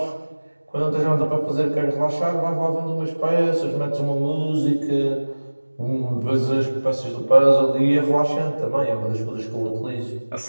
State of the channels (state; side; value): inverted; both; correlation -1.00